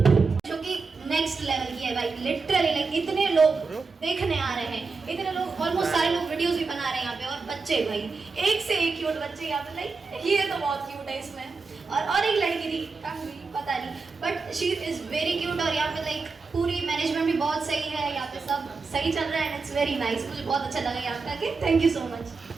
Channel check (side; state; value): left; quieter; 4.4 dB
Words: जो कि नेक्स्ट लेवल की है भाई. लिटरली लाइक इतने लोग देखने आ रहे हैं, इतने लोग ऑलमोस्ट सारे लोग वीडियोस भी बना रहे हैं यहाँ पे. और बच्चे भाई एक से एक क्यूट बच्चे यहाँ पे. लाइक ये तो बहुत क्यूट है इसमें. और एक लड़की थी पता नहीं but she is very cute. और यहाँ पे लाइक पूरी मैनेजमेंट भी बहुत सही है, यहाँ पे सब सही चल रहा है एंड इट्स वेरी नाइस. मुझे बहुत अच्छा लगा यहाँ पे आके. Thank you so much.